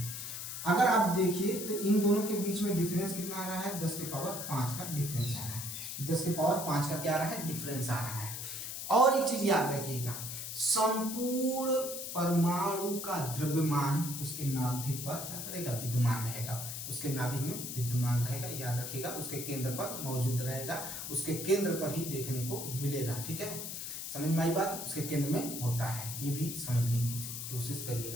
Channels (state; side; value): noise; left; hiss, 6 dB below the sound